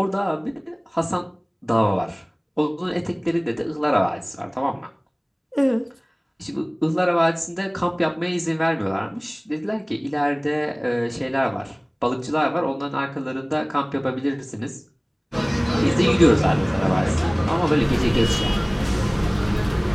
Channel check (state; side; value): identical; both; correlation 1.00